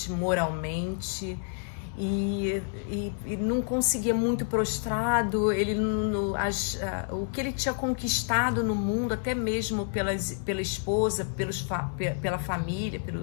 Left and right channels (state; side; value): silent; right; digital silence